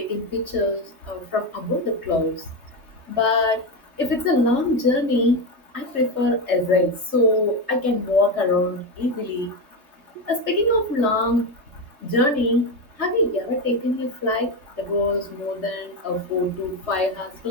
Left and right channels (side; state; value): left; late; 3.3 ms